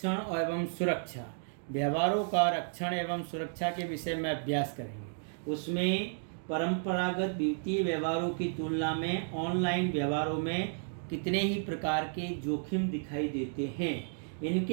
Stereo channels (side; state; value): left; silent; digital silence